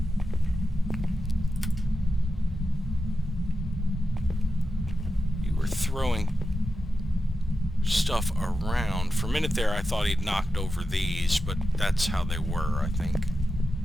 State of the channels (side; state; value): both; normal; correlation 0.90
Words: You were throwing stuff around. For a minute there, I thought he'd knocked over these, but that's how they were, I think.